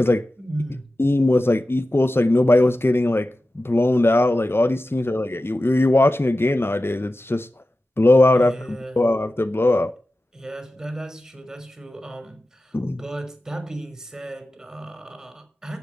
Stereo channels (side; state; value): both; normal; correlation 0.94